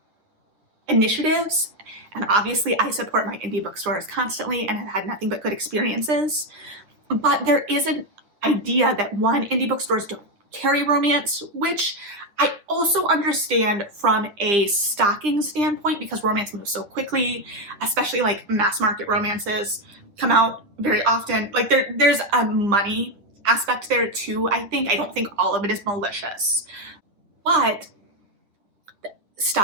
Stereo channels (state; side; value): late; left; 9.7 ms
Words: initiatives. And obviously I support my indie bookstores constantly and have had nothing but good experiences. But there is an idea that indie bookstores don't carry romance, which I also understand from a stocking standpoint, because romance moves so quickly, especially like mass market romances come out very often. Like there's a money aspect there too, I think. I don't think all of it is malicious. But